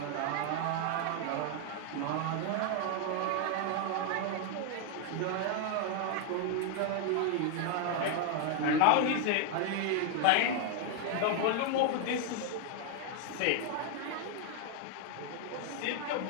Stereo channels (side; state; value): both; different; correlation 0.00